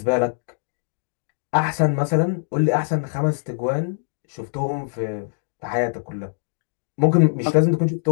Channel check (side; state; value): right; silent; digital silence